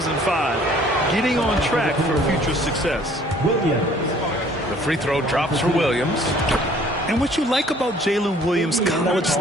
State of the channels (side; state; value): both; normal; correlation 0.56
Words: Getting on track for future success. The free throw drops for Williams. And what you like about Jalen Williams' college